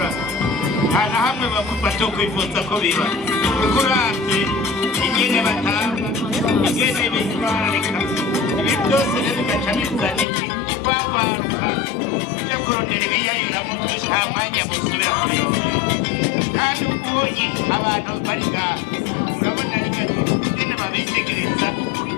nta na hamwe batokwifuza ko biba kuko uravye ingene batanga ingene bitwararika ibi byose rero bigaca bizana ikwagwaruka byo kurondera ibiyayuramo nta mwanya musubira kubirondera kandi ubonye abantu bari ngaha urabona ingene babitegereza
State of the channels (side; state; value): right; drops out; at 10.2 s